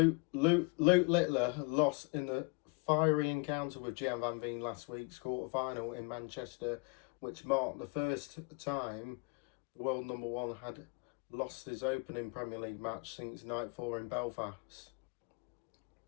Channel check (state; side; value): quieter; right; 31.5 dB